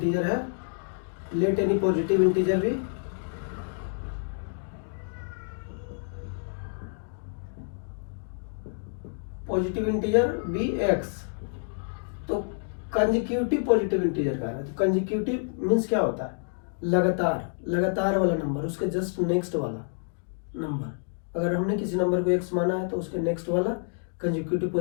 है, लेट एनी पॉजिटिव इंटीजर भी पॉजिटिव इंटीजर बी एक्स। तो कंसेक्यूटिव पॉजिटिव इंटीजर का है, तो कंसेक्यूटिव मीन्स क्या होता है? लगातार वाला नंबर, उसके जस्ट नेक्स्ट वाला नंबर। अगर हमने किसी नंबर को एक्स माना है तो उसके नेक्स्ट वाला कंसेक्यूटिव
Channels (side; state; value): right; silent; digital silence